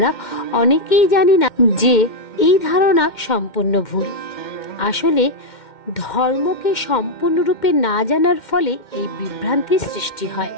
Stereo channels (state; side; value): late; right; 2.1 ms